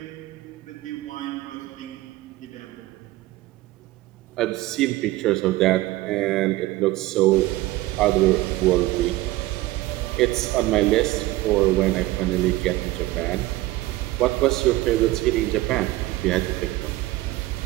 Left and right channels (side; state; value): left; quieter; 17.7 dB